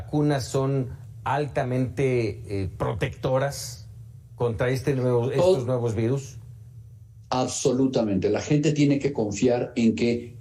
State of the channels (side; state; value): both; identical; correlation 1.00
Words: son altamente protectoras contra estos nuevos virus. Absolutamente. La gente tiene que confiar en que